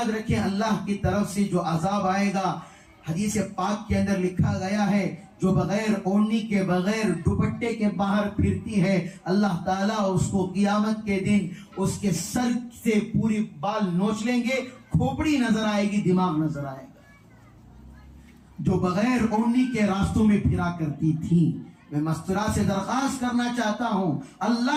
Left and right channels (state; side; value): identical; both; correlation 1.00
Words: رکھیں اللہ کی طرف سے جو عذاب آئے گا، حدیث پاک کے اندر لکھا گیا ہے جو بغیر اوڑھنی کے بغیر دوپٹے کے باہر پھرتی ہے، اللہ تعالیٰ اس کو قیامت کے دن اس کے سر سے پوری بال نوچ لیں گے، کھوپڑی نظر آئے گی، دماغ نظر آئے گا۔ جو بغیر اوڑھنی کے راستوں میں پھرا کرتی تھی، میں مستورہ سے درخواست کرنا چاہتا ہوں